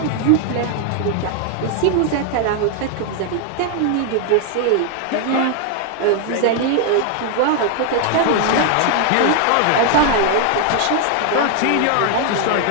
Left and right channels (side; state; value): both; different; correlation 0.00